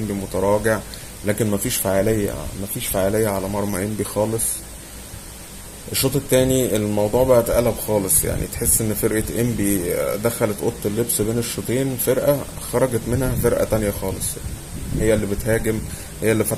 متراجع، لكن مفيش فعالية على مرمى إنبي خالص. الشوط التاني الموضوع بقى اتقلب خالص، يعني تحس ان فرقة إنبي دخلت أوضة اللبس بين الشوطين، فرقة خرجت منها فرقة تانية خالص. هي اللي بتهاجم، هي اللي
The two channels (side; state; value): both; identical; correlation 1.00